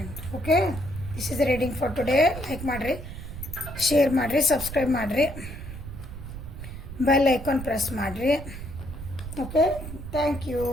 Okay, this is reading for today. Like ಮಾಡಿರಿ, ಶೇರ್ ಮಾಡಿರಿ, ಸಬ್ಸ್ಕ್ರೈಬ್ ಮಾಡಿರಿ, ಬೆಲ್ ಐಕಾನ್ ಪ್ರೆಸ್ ಮಾಡಿರಿ. Okay, thank you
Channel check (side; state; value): right; noise; rumble, 10 dB below the sound